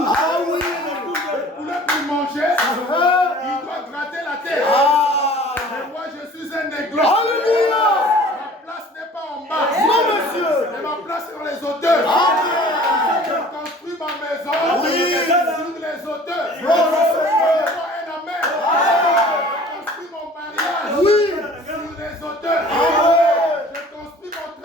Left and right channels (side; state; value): both; normal; correlation 0.48